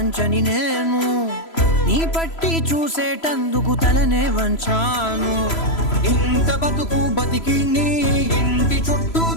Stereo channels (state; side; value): late; right; 3.0 ms